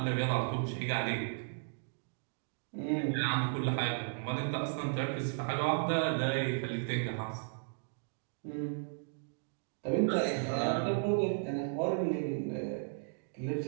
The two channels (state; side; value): silent; left; digital silence